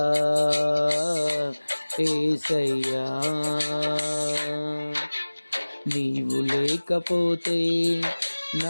యేసయ్యా. నీవు లేకపోతే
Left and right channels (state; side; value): inverted; both; correlation -1.00